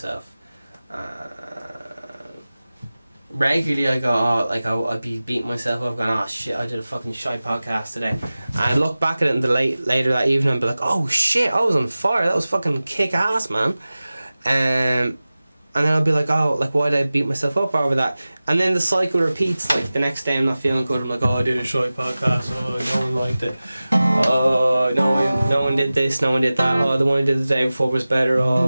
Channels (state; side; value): inverted; both; correlation -0.97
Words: Regularly I go, I'd be beating myself up going, oh shit, I did a fucking shy podcast today. And I'd look back at it in the later that evening and be like, oh shit, I was on fire, that was fucking kick ass, man. And then I'll be like, oh, like, why did I beat myself up over that? And then the cycle repeats. Like, the next day I'm not feeling good. I'm like, oh, I did a shy podcast. Oh, no one liked it. Oh, no one did this. No one did that. Oh, the one I did the day before was better. Oh,